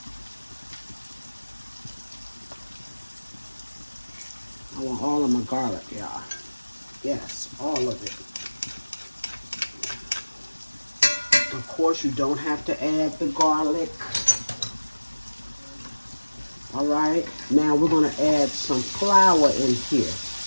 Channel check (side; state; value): both; inverted; correlation -1.00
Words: I want all of my garlic, y'all. Yes, all of it. Of course, you don't have to add the garlic. All right, now we're going to add some flour in here.